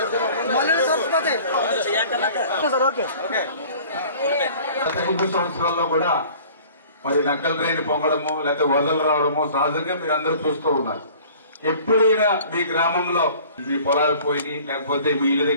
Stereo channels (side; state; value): both; inverted; correlation -0.48